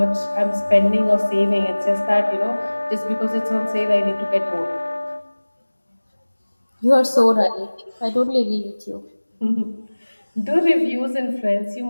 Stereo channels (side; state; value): both; inverted; correlation -1.00